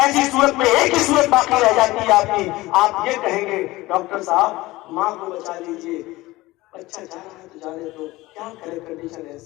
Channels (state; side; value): quieter; right; 19.3 dB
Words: ایسی صورت میں ایک ہی صورت باقی رہ جاتی ہے آپ کی، آپ یہ کہیں گے ڈاکٹر صاحب ماں کو بچا لیجیے، بچہ جا رہا ہے تو جانے دو، کیا کرے کنڈیشن